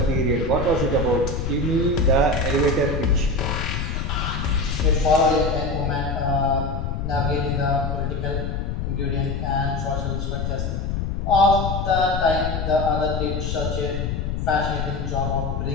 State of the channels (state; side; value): noise; left; rumble, 2 dB below the sound